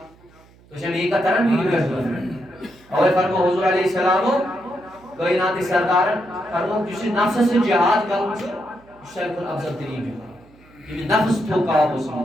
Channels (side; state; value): right; noise; hum, 27 dB below the sound